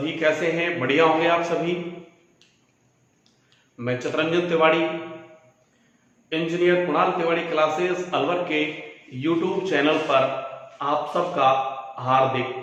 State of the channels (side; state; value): both; identical; correlation 1.00